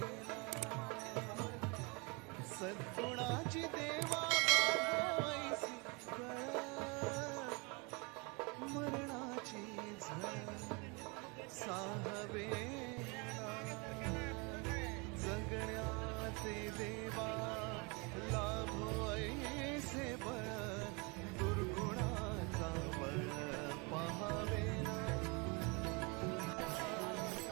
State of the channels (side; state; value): left; quieter; 29.9 dB